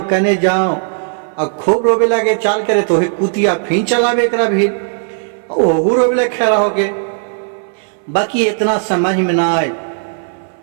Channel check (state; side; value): silent; left; 59 dB below the other